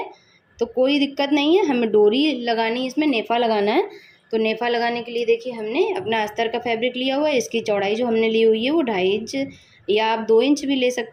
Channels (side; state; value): both; identical; correlation 1.00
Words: तो कोई दिक्कत नहीं है। हमें डोरी लगानी है, इसमें नेफ़ा लगाना है। तो नेफ़ा लगाने के लिए देखिए हमने अपना अस्तर का फैब्रिक लिया हुआ है। इसकी चौड़ाई जो हमने ली हुई है वो 2.5 इंच या आप 2 इंच भी ले